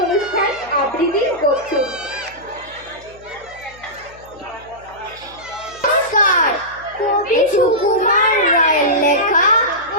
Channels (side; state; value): left; noise; hum, 24 dB below the sound